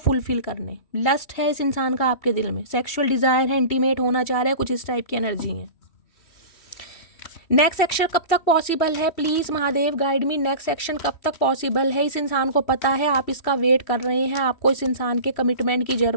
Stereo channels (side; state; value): right; late; 3.1 ms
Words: करने, लस्ट है इस इंसान का आपके दिल में, सेक्सुअल डिज़ायर है, इंटीमेट होना चाह रहा है, कुछ इस टाइप की एनर्जी है। नेक्स्ट सेक्शन कब तक पॉसिबल है? Please Mahadev guide me, next section कब तक पॉसिबल है? इस इंसान को पता है आप इसका वेट कर रहे हैं, आपको इस इंसान के कमिटमेंट की